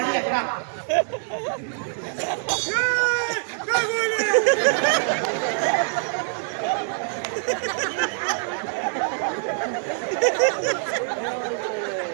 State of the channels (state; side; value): silent; left; 61 dB below the other